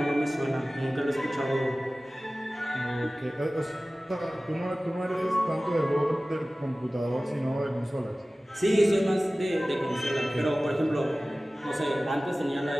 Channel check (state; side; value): normal; both; correlation 0.97